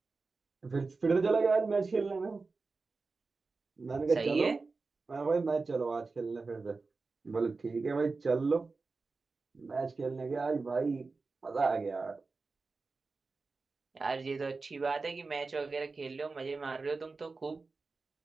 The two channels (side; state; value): left; quieter; 4.0 dB